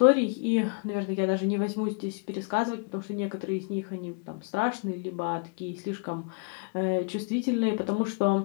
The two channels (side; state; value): right; quieter; 33.8 dB